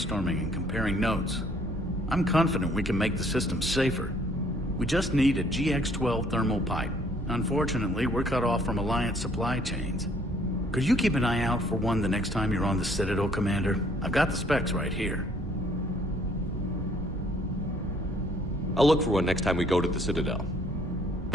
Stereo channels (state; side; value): normal; both; correlation 0.62